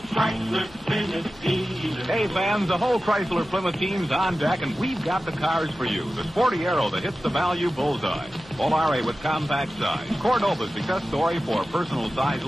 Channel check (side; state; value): left; noise; rumble, 24 dB below the sound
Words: Chrysler Plymouth dealer. Hey, fans, the whole Chrysler Plymouth team's on deck, and we've got the cars for you. The Sporty Arrow that hits the value bullseye. Volare with compact size. Cordova's success story for personal size